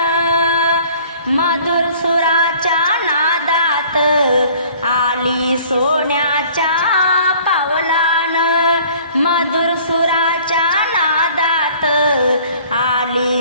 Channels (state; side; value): inverted; both; correlation -0.52